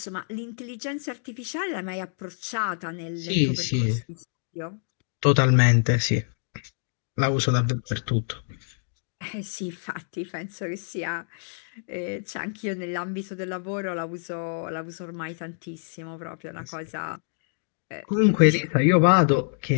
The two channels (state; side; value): silent; right; digital silence